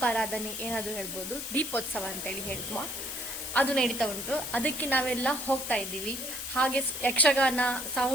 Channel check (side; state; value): left; noise; hiss, 7 dB below the sound